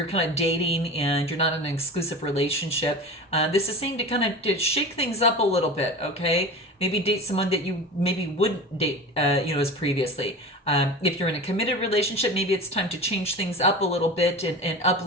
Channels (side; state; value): both; normal; correlation 0.32